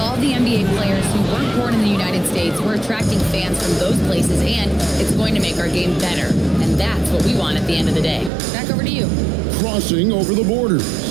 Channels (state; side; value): drops out; left; at 8.3 s